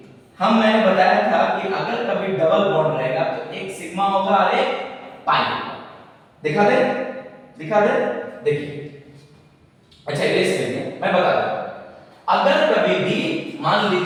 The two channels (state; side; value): identical; both; correlation 1.00